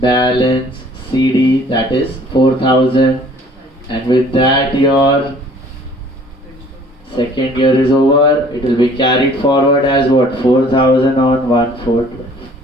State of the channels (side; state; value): both; normal; correlation 0.54